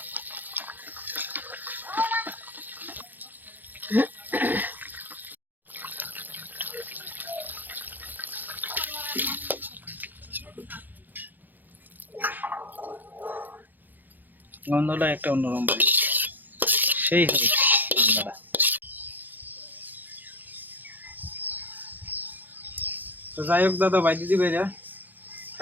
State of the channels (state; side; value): late; left; 0.086 ms